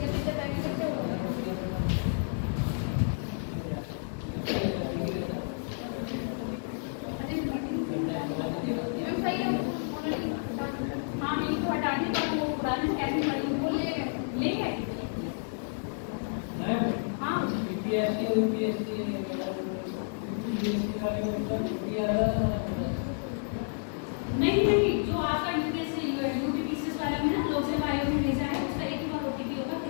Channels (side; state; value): right; silent; digital silence